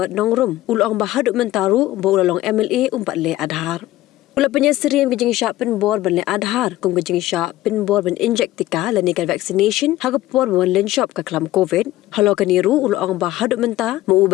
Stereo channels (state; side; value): quieter; right; 15.9 dB